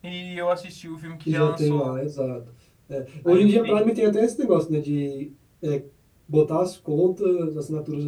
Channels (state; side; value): identical; both; correlation 1.00